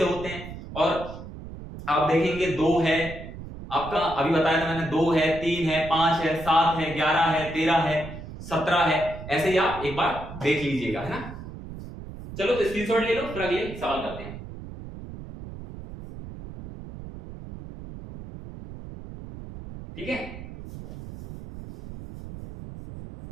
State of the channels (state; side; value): noise; right; rumble, 12 dB below the sound